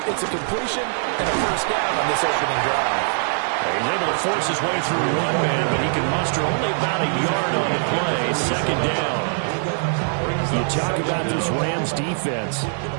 it's a completion and a first down on this opening drive. He's able to force his way through one man, but he can muster only about a yard on the play. 2nd down. You talk about this Rams defense.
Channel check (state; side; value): silent; left; digital silence